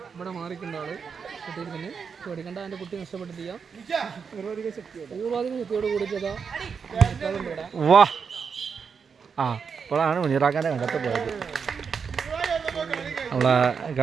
ഇവിടെ മാറിക്കണ്ട ആള് കുട്ടിയിൽ തന്നെ പേടിക്കണ്ട. എൻ്റെ കുട്ടി നഷ്ടപ്പെട്ടിട്ടില്ല. പൂർവാധികം ശക്തിയോട് കൂടിയിട്ടതാ. വാ ആ ഇപ്പോഴാണ് മുനീറാക്കാൻ്റെ കണ്ടത്ത് പോയത്. നമ്മളെ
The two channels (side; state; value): left; quieter; 6.1 dB